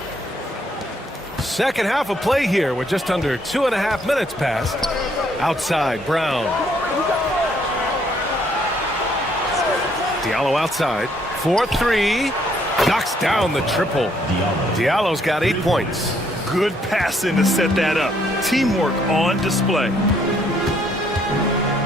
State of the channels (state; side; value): normal; both; correlation 0.68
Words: Second half of play here with just under 2.5 minutes passed. Outside, Brown. Diallo outside. 4-3. Knocks down the triple. Diallo's got 8 points. Good passing to set that up. Teamwork on display.